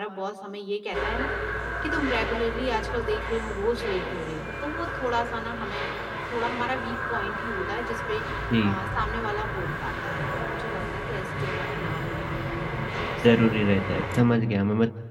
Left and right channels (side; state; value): both; identical; correlation 1.00